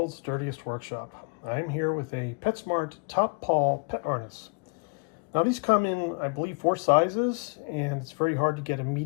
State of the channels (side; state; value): right; quieter; 35.7 dB